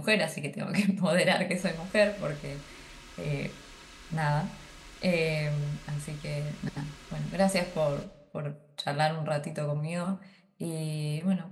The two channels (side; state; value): both; identical; correlation 1.00